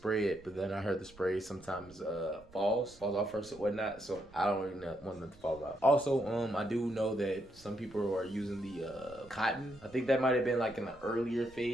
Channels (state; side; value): noise; right; rumble, 24 dB below the sound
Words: it, but then I heard the spray sometimes falls off first or whatnot, so I don't really want them to fall off. Also, I do know that some people are using the cotton. I think that might have been like in the earlier